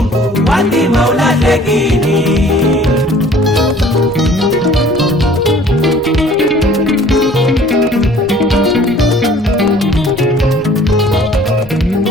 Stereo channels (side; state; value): both; normal; correlation 0.53